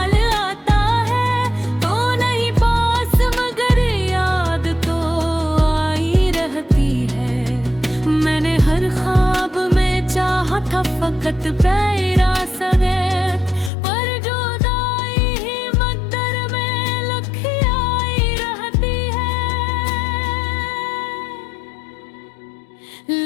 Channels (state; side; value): drops out; right; at 13.7 s